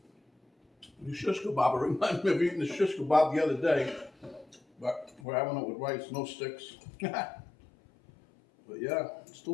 the shish kebab. It reminds me of eating the shish kebab the other day, but we're having it with rice, no sticks. But yeah, it's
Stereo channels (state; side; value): drops out; right; at 5.2 s